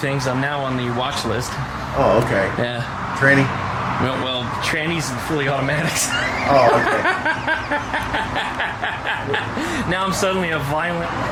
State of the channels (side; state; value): both; identical; correlation 1.00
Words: I'm now on the watch list. Oh, okay. Yeah. Tranny? Well, trannies and fully automatics. Oh, okay. Now I'm suddenly a violent,